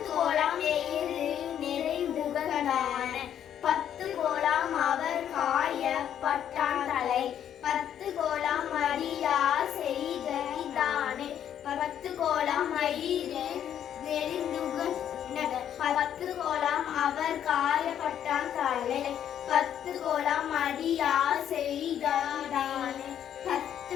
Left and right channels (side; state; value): right; quieter; 9.8 dB